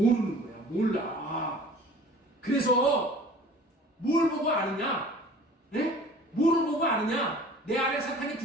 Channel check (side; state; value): both; normal; correlation 0.46